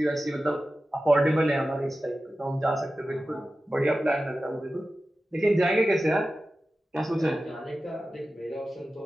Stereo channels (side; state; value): both; normal; correlation 0.94